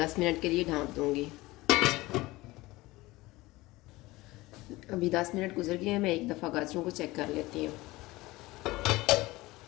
मिनट के लिए ढाँप दूंगी। अभी 10 मिनट गुजर गए हैं, मैं एक दफ़ा गाजरों को चेक कर लेती हूँ।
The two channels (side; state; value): right; quieter; 20.1 dB